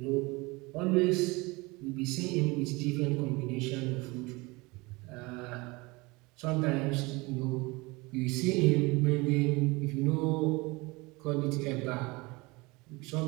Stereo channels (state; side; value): quieter; left; 24.4 dB